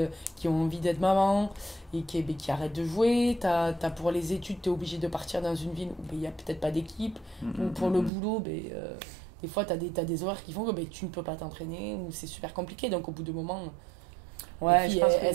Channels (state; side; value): drops out; left; at 8.1 s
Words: ont envie d'être maman et qui arrêtent de jouer. T'as pour les études, tu es obligé de partir dans une ville où il n'y a peut-être pas d'équipe. Ou pour le boulot, des fois, tu as des horaires qui font que tu ne peux pas t'entraîner ou c'est super compliqué. Donc, au bout de moment, ouais, les filles, je pense